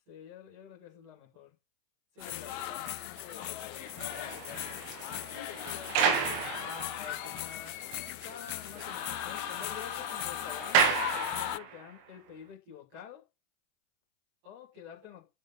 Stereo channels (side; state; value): left; late; 23 ms